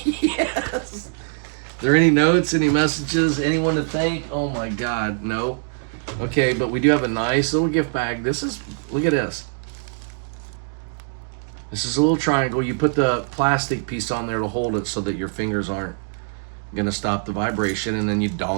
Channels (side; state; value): left; silent; digital silence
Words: Are there any notes, any messages, anyone to thank? Oh my God, no. Okay, but we do have a nice little gift bag. Look at this. This is a little triangle. You put the plastic piece on there to hold it so that your fingers aren't gonna stop the vibration, and then you